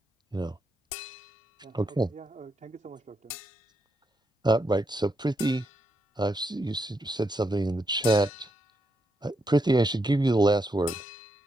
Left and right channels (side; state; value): both; normal; correlation 0.81